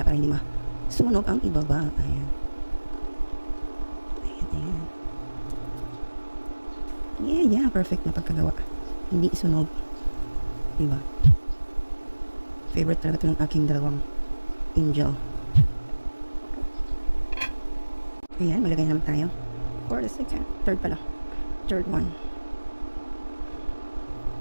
para hindi masunog ang ibaba. Ayan. Ayan, ayan. Yeah, perfect na pagkagawa. Hindi isunog. Diba? Favorite talaga ito ng aking dalawang angel. Ayan, malagay naman tayo. For the second. Third pala. Third one.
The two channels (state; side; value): inverted; both; correlation -1.00